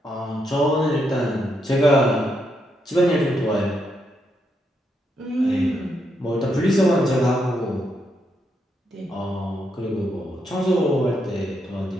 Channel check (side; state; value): both; normal; correlation 0.79